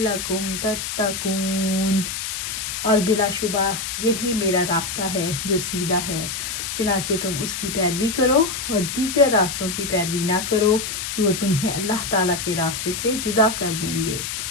تتقون۔ اور بلا شبہ یہی میرا راستہ ہے جو سیدھا ہے، چنانچہ تم اس کی پیروی کرو اور دیگر راستوں کی پیروی نہ کرو کہ وہ تمہیں اللہ تعالیٰ کے راستے سے جدا کر دیں گے۔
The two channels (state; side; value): noise; left; hiss, 4 dB below the sound